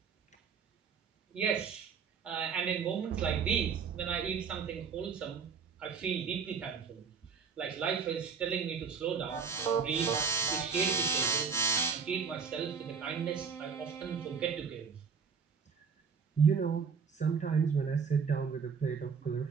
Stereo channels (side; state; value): left; quieter; 6.0 dB